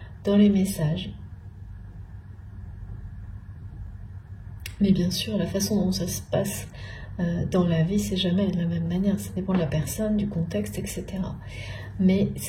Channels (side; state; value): both; identical; correlation 1.00